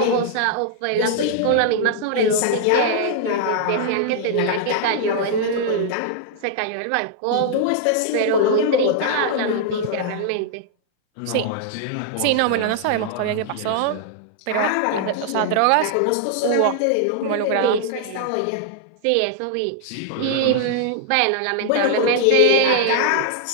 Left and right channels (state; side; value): different; both; correlation -0.01